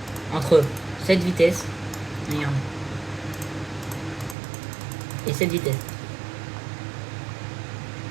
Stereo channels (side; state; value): left; drops out; at 4.4 s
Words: entre cette vitesse, regarde, et cette vitesse.